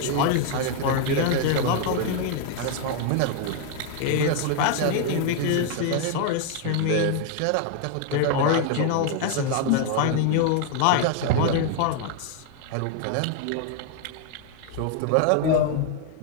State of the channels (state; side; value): different; both; correlation 0.00